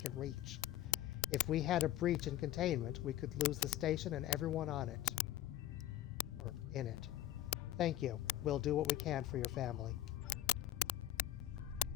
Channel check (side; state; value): right; quieter; 13.4 dB